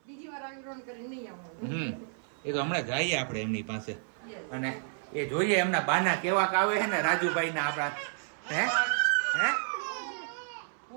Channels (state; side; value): silent; left; 57 dB below the other